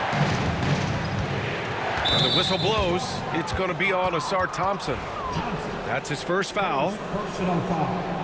And the whistle blows. It's going to be on Asar Thompson. That's his first foul. Personal foul.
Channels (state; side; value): identical; both; correlation 1.00